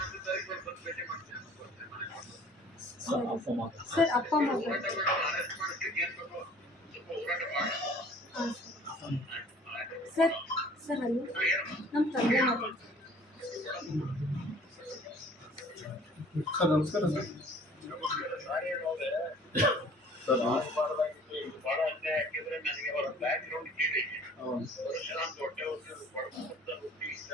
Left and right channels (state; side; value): normal; both; correlation 0.51